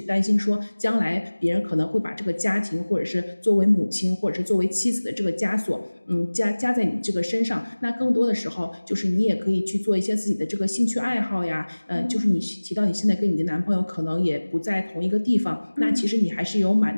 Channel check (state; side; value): inverted; both; correlation -1.00